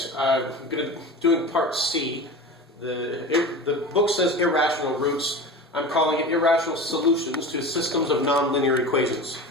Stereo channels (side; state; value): both; normal; correlation 0.31